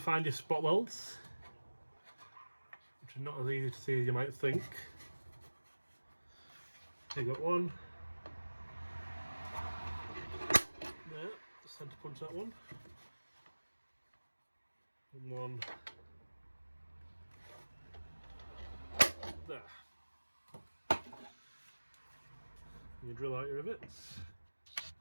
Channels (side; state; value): both; inverted; correlation -1.00